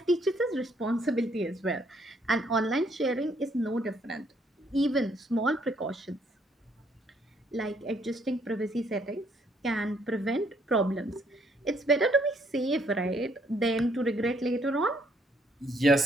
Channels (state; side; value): normal; both; correlation 0.68